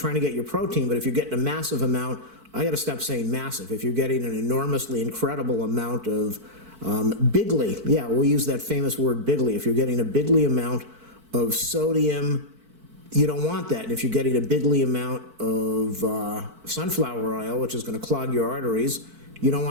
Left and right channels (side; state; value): left; late; 4.5 ms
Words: to get your protein, but if you're getting a massive amount, I got to stop saying massive. If you're getting an enormously incredible amount of bigly, yeah, we'll use that famous word bigly. If you're getting a bigly amount of sodium, you don't want that. And if you're getting a bigly amount of sunflower oil, which is going to clog your arteries, you don't